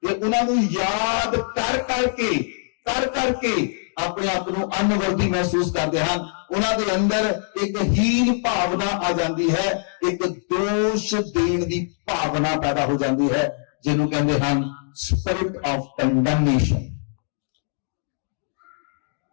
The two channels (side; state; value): right; silent; digital silence